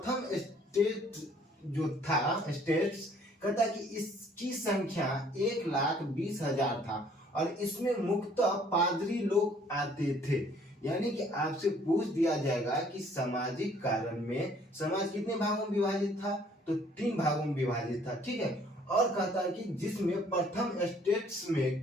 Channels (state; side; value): normal; both; correlation 0.59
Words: स्टेट जो था स्टेट्स, कहता है कि इसकी संख्या 1,20,000 था और इसमें मुख्यतः पादरी लोग आते थे। यानी कि आपसे पूछ दिया जाएगा कि सामाजिक कारण में समाज कितने भागों में विभाजित था? तो 3 भागों में विभाजित था, ठीक है। और कहता है कि जिसमें प्रथम स्टेट्स